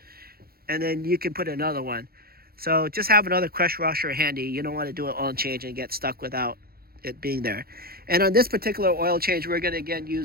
and then you can put another one. So just have another crush washer handy. You don't want to do an oil change and get stuck without it being there. And on this particular oil change, we're going to again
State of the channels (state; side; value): late; left; 0.44 ms